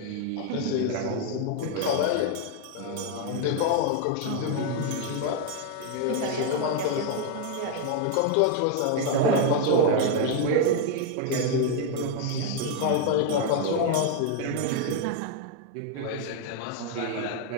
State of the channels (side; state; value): both; different; correlation 0.01